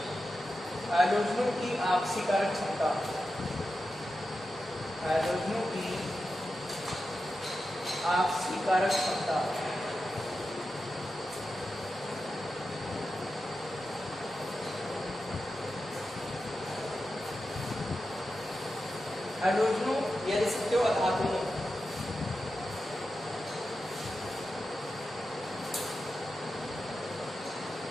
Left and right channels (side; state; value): both; normal; correlation 0.91